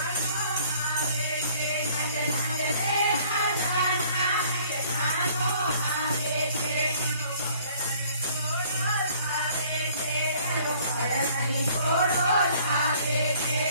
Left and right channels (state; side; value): inverted; both; correlation -0.56